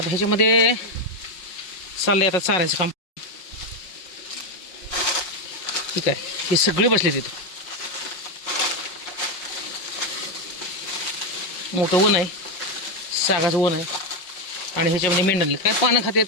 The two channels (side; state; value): right; late; 5.6 ms